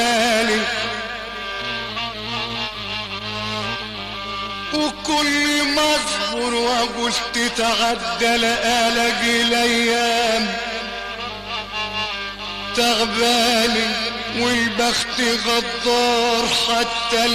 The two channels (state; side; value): identical; both; correlation 1.00